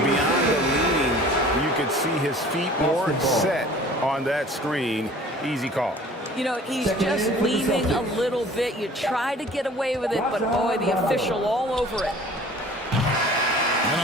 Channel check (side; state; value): both; normal; correlation 0.47